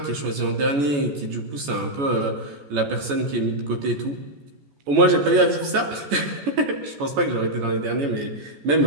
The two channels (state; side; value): late; left; 14 ms